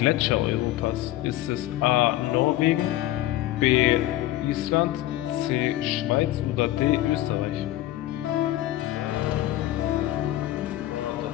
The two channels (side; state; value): right; quieter; 15.1 dB